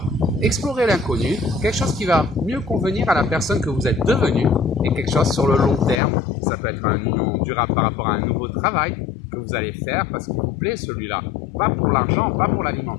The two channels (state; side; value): drops out; right; at 6.0 s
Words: explorez l'inconnu, quelque chose qui va mieux convenir à la personne que vous êtes devenue et quelque chose sur le long terme. Ça peut être une union durable par rapport à un nouveau travail que vous allez faire parce qu'il vous plaît celui-là. Pas pour l'argent, pas pour